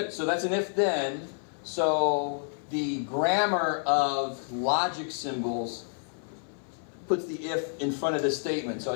So that's an if-then. So the grammar of logic symbols puts the if in front of the statement. So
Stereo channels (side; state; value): right; silent; 58 dB below the other